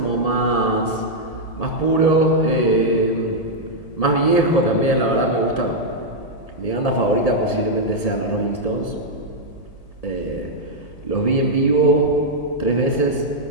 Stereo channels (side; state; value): right; late; 1.7 ms